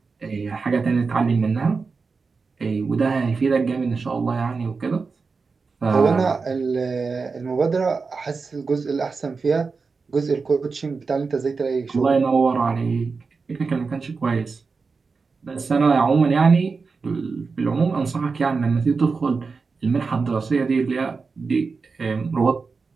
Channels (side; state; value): left; quieter; 4.6 dB